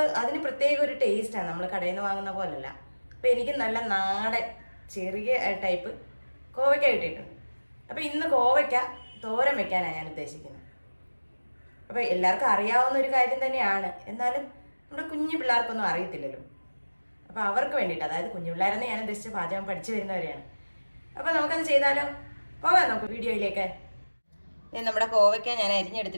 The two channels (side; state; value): both; inverted; correlation -1.00